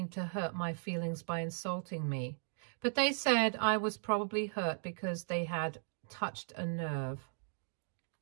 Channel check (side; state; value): left; silent; digital silence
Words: to hurt my feelings by insulting me. But they said I was probably hurt because they had touched a nerve.